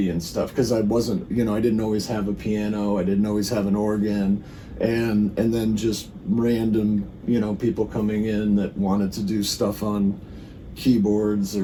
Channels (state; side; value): identical; both; correlation 1.00